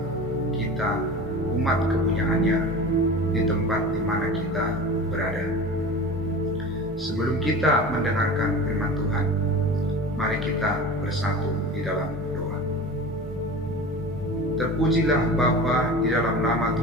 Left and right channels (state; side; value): normal; both; correlation 0.34